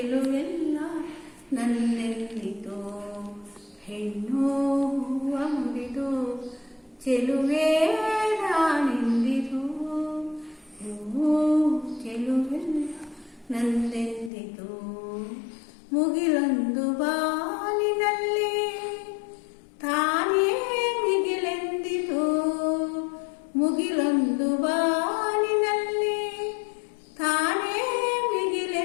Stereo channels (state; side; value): drops out; right; at 14.3 s